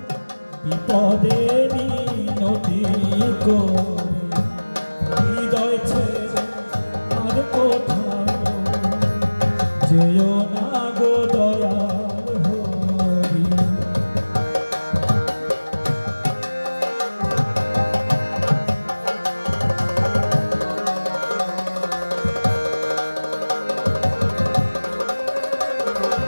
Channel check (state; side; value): inverted; both; correlation -1.00